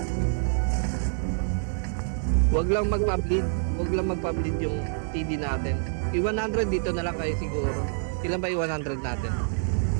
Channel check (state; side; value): silent; left; 60 dB below the other